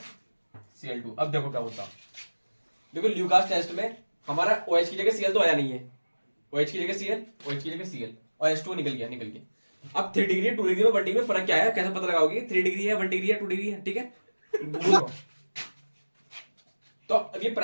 अब देखो क्या होता। देखो ल्यूकास टेस्ट में हमारा OH की जगह Cl तो आया नहीं है, OH की जगह Cl, OH की जगह Cl और H2O निकल गया। अब 3 डिग्री 2 डिग्री में 1 डिग्री में फर्क क्या है? कैसे पता लगाओगे? 3 डिग्री है, 1 डिग्री है, 2 डिग्री है, ठीक है। तो अब ये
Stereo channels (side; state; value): both; inverted; correlation -1.00